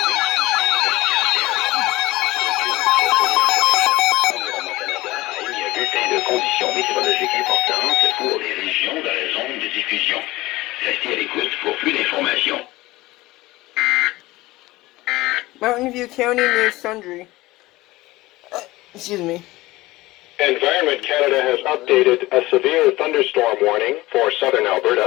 Conditions météorologiques importantes pour les régions dans la zone de diffusion. Restez à l'écoute l'écoute pour plus d'informations. Mountain View County near Sundre. Excuse me. Environment Canada has updated a severe thunderstorm warning for southern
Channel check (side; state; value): right; quieter; 19.1 dB